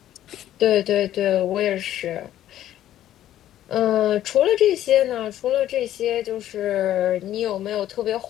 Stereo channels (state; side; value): quieter; right; 12.4 dB